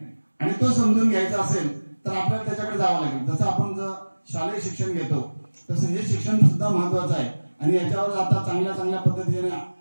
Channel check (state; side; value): inverted; both; correlation -1.00